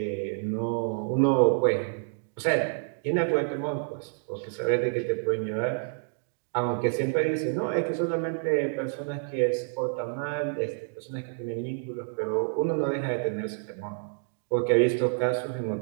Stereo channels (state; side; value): silent; left; digital silence